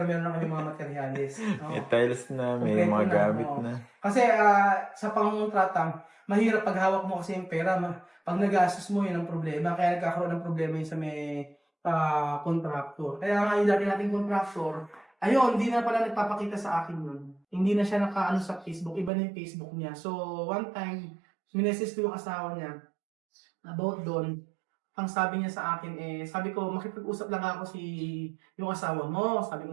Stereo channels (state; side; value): drops out; left; at 19.1 s